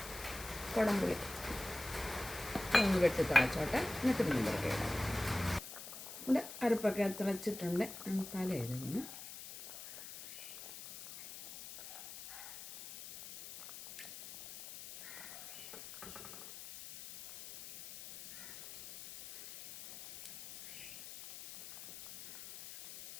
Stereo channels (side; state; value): left; noise; hiss, 12 dB below the sound